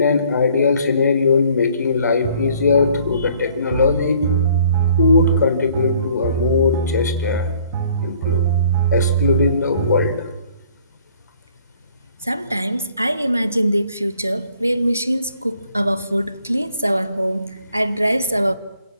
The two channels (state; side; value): inverted; both; correlation -0.59